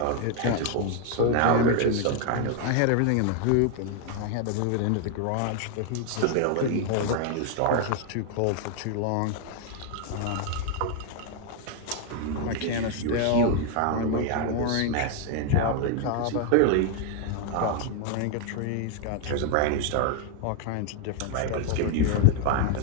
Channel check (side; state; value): both; different; correlation 0.00